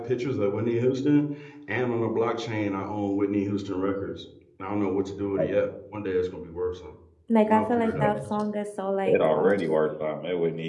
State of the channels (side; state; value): both; identical; correlation 1.00